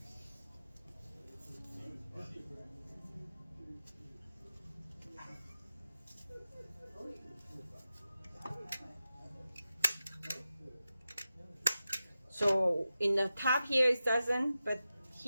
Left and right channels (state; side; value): inverted; both; correlation -0.92